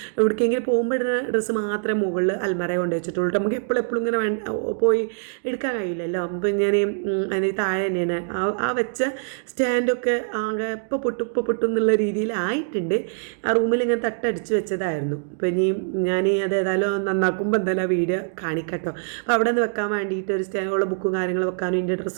എവിടേക്കെങ്കിലും പോകുമ്പോൾ ഇടുന്ന ഡ്രസ്സ് മാത്രമേ മുകളിൽ അൽമറ കൊണ്ട് വെച്ചിട്ടുള്ളൂ. നമുക്ക് എപ്പോഴും ഇങ്ങനെ പോയി എടുക്കാൻ കഴിയില്ലല്ലോ. അപ്പം ഞാൻ അതിന് താഴെ തന്നെയാണ് ആ വെച്ച സ്റ്റാൻഡൊക്കെ ആകെ ഇപ്പോൾ പൊട്ടും എന്നുള്ള രീതിയിലായിട്ടുണ്ട്. ആ റൂമിൽ ഇങ്ങനെ തട്ടടിച്ച് വെച്ചതായിരുന്നു. അപ്പോൾ ഇനി ഞാൻ അത് ഏതായാലും നന്നാക്കുമ്പോൾ എന്തായാലും ആ വീഡിയോ കാണിക്കട്ടോ. അപ്പോൾ അവിടെ നിന്ന് വെക്കാൻ വേണ്ടിയിട്ട് ഒരു സ്റ്റാൻഡുള്ള ബുക്കും കാര്യങ്ങളും വെക്കാനും ഇതിൻ്റെ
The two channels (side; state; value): left; silent; digital silence